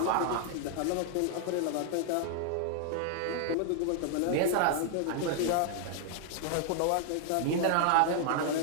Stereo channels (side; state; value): both; different; correlation 0.00